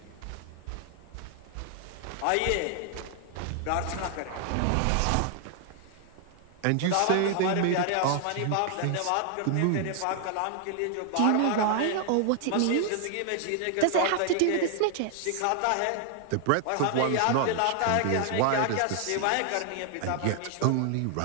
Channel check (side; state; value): both; different; correlation 0.00